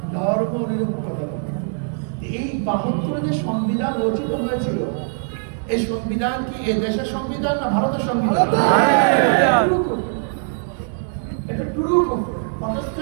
ধর্ম নিরপেক্ষতা। এই 72 যে সংবিধান রচিত হয়েছিল, এই সংবিধান কি এ দেশের সংবিধান না ভারতের সংবিধান? এটা টুরু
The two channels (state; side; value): silent; left; digital silence